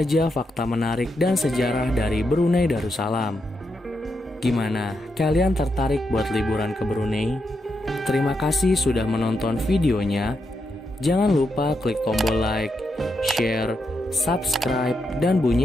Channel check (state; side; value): normal; both; correlation 0.83